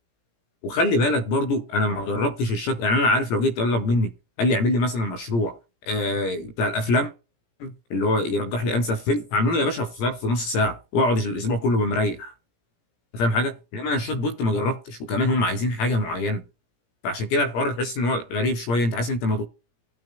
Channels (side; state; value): right; late; 17 ms